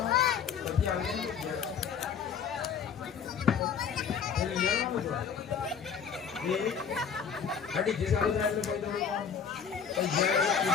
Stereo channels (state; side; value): quieter; right; 6.9 dB